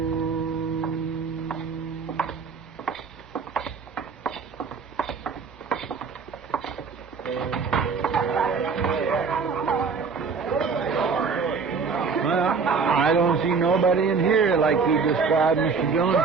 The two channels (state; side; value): quieter; left; 5.2 dB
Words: I don't see nobody in here like you described, Mr. Dillon.